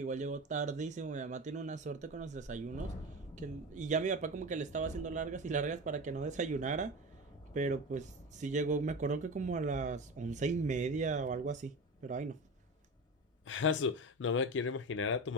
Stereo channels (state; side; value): normal; both; correlation 0.26